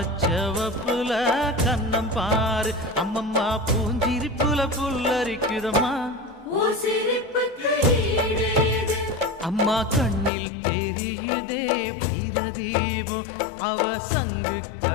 கண்ணம் பாரு. அம்மம்மா பூஞ்சிரிப்புல புல்லரிக்குதம்மா, அம்மா கண்ணில் தெரியுதே வீரதீபம், அவ சங்கு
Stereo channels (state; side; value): drops out; right; at 10.3 s